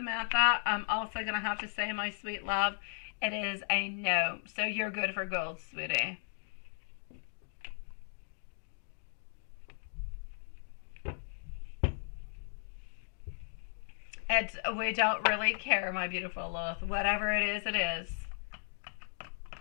I'm also going to have to say, my sweet love, it is a no. So you're good for gold, sweetie. We don't really care, my beautiful Lilith. Whatever it is, it is.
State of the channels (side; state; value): right; silent; digital silence